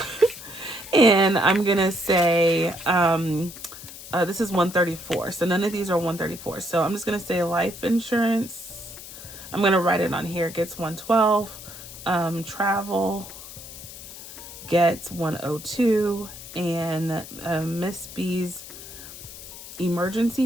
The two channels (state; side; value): noise; left; hiss, 14 dB below the sound